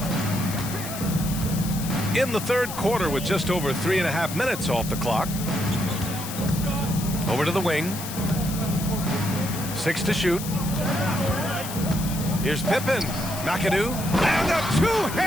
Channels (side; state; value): left; noise; hiss, 9 dB below the sound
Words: In the third quarter with just over 3.5 minutes off the clock. Over to the wing. 6 to shoot. Here's Pippen. McAdoo. And a